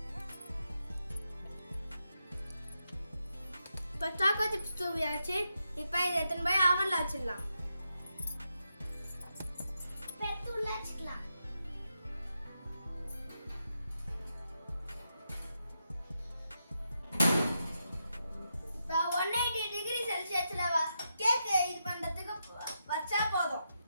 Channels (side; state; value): both; inverted; correlation -0.85